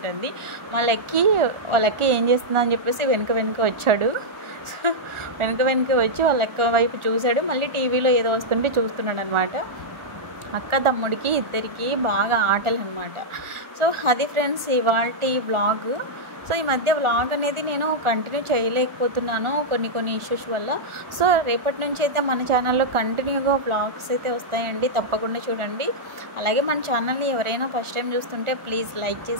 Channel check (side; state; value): left; late; 1.4 ms